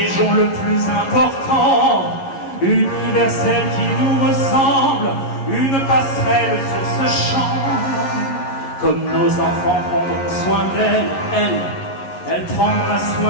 le plus important, universel qui nous ressemble, une passerelle sur ce champ. Comme nos enfants prendront soin d'elle, elle prendra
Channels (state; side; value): late; right; 11 ms